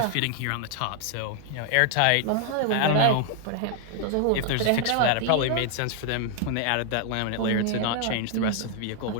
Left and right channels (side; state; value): both; different; correlation 0.00